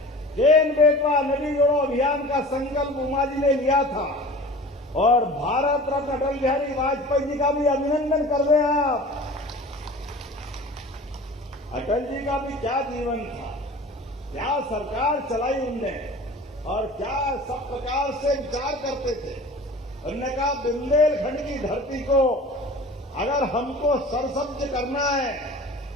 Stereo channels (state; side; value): normal; both; correlation 0.40